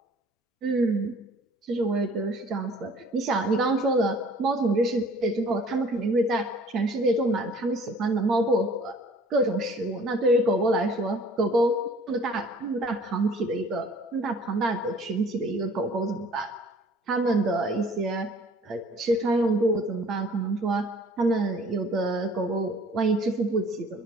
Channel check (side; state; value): both; normal; correlation 0.52